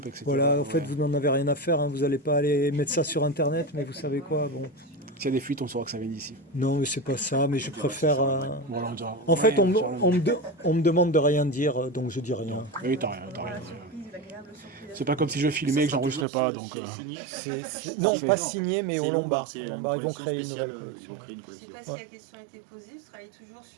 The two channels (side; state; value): left; drops out; at 16.2 s